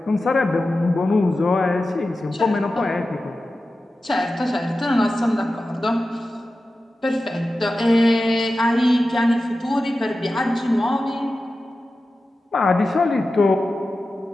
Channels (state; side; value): normal; both; correlation 0.93